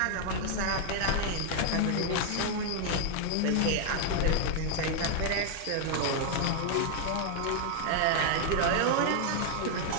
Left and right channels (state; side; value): different; both; correlation 0.00